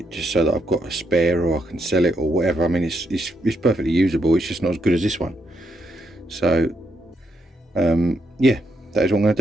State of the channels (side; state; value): both; normal; correlation 0.78